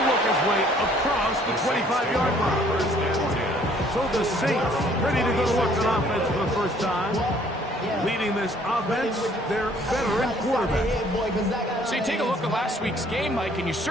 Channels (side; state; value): both; normal; correlation 0.60